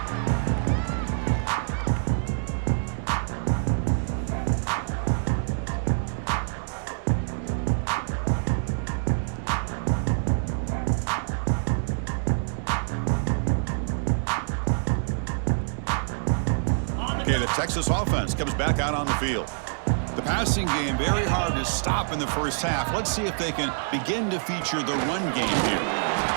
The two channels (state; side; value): silent; left; digital silence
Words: Okay, the Texas offense comes back out on the field. The passing game, very hard to stop in the first half. Let's see if they can begin to feature the run game here.